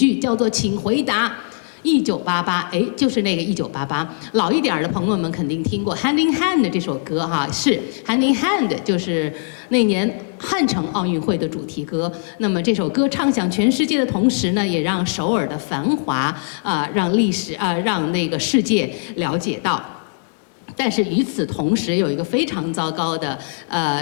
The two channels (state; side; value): silent; right; digital silence